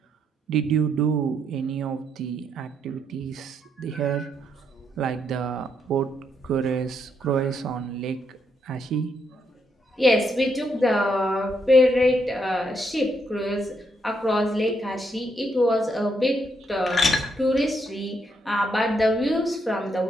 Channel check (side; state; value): both; normal; correlation 0.77